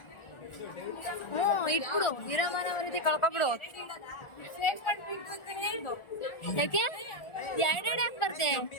ಇಟ್ಬಿಡು, ಇರೋ ಮನವರಿತಿ ಕಳ್ಕೊಬಿಡು. ಯಾಕೆ ಎರಡೆರಡು ಯಾಕೆ ಬರ್ತೆ?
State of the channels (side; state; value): right; late; 1.4 ms